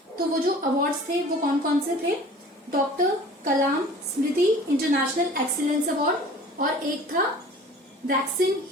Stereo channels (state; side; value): normal; both; correlation 0.45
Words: तो वो जो अवार्ड्स थे वो कौन कौन से थे, डॉक्टर कलाम स्मृति इंटरनेशनल एक्सीलेंस अवार्ड और एक था वैक्सीन